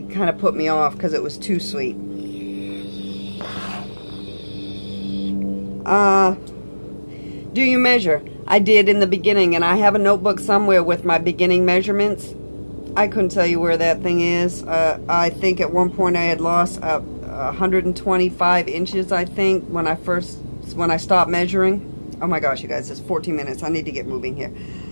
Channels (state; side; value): inverted; both; correlation -1.00